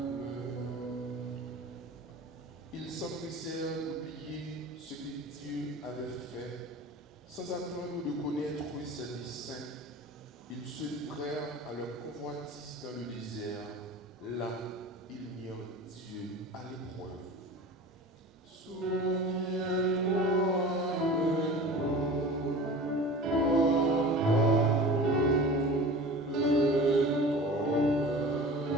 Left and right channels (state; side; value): normal; both; correlation 0.37